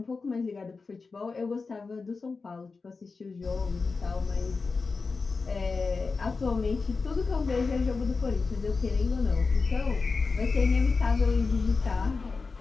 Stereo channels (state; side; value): quieter; right; 4.3 dB